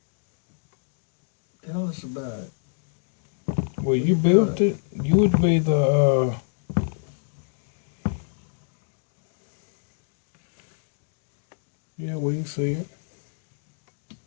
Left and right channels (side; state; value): right; silent; digital silence